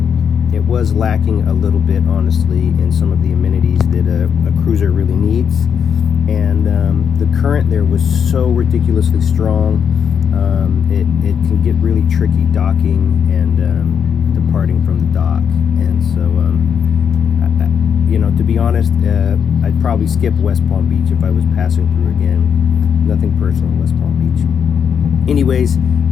it was lacking a little bit, honestly, in some of the amenities that a cruiser really needs. And the current there was so ridiculously strong, it can get really tricky docking and departing from the dock. And so, to be honest, I'd probably skip West Palm Beach if I was passing through again. Nothing personal in West Palm Beach. Anyways,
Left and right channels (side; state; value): right; quieter; 7.4 dB